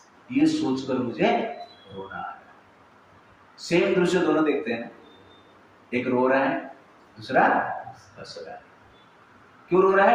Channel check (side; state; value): both; identical; correlation 1.00